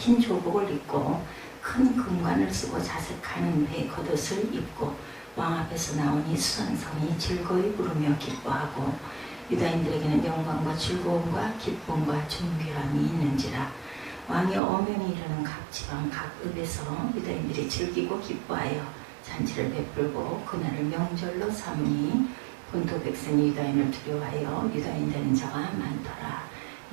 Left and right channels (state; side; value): drops out; left; at 14.6 s